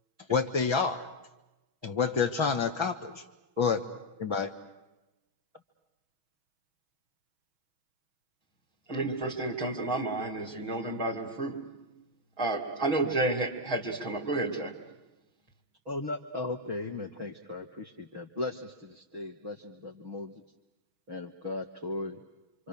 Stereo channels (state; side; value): late; left; 6.2 ms